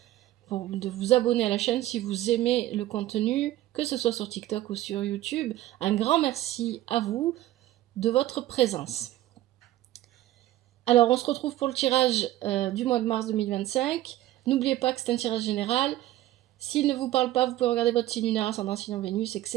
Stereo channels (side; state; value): left; quieter; 14.7 dB